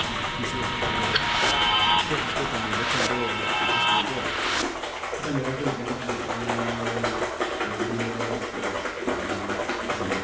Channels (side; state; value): both; identical; correlation 1.00